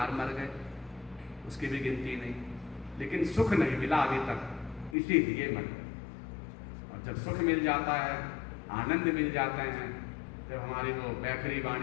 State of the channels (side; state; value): right; drops out; at 5.0 s